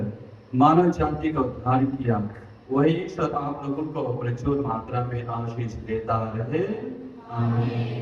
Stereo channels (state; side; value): identical; both; correlation 1.00